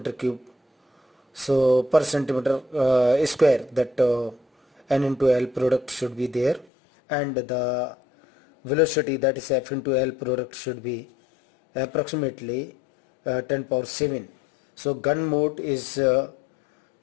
cube, so per centimeter square, that N into L product should be there, and the velocity, that is F into L product, should be approximately 10 power 7. So gun mode is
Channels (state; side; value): drops out; right; at 6.7 s